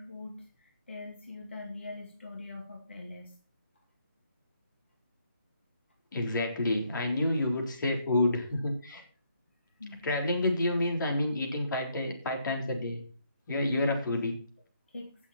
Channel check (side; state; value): both; inverted; correlation -0.72